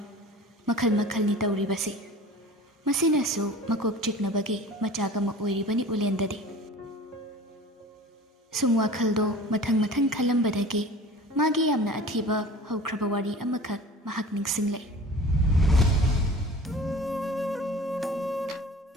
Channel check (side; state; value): both; normal; correlation 0.41